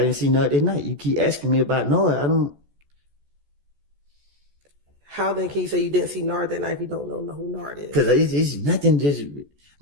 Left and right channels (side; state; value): left; late; 14 ms